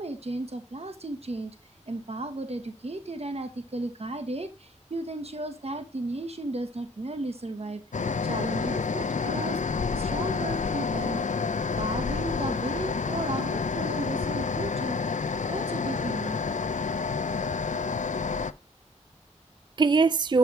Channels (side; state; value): both; normal; correlation 0.49